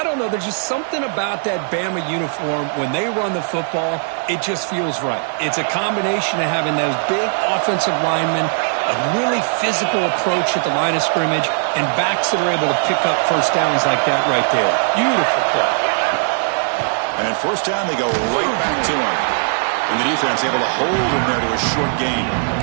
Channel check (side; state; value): left; silent; 59 dB below the other